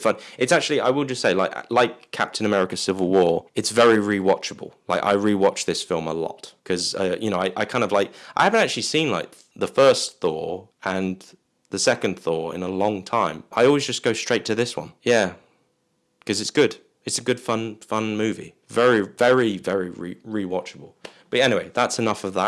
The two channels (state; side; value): identical; both; correlation 1.00